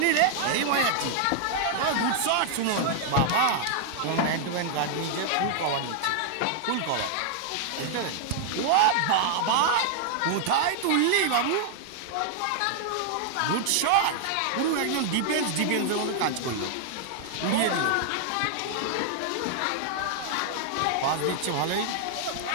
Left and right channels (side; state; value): both; different; correlation -0.01